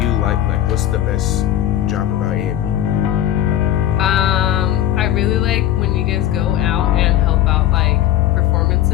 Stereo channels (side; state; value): right; quieter; 12.1 dB